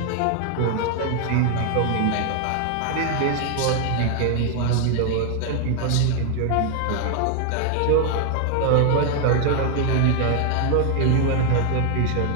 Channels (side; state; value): both; different; correlation 0.00